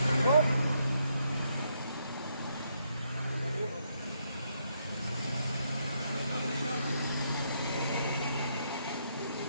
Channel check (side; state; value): both; inverted; correlation -0.76